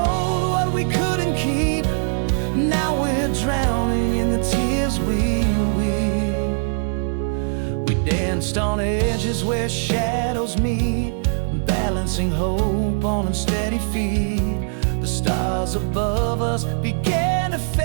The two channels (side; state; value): left; silent; digital silence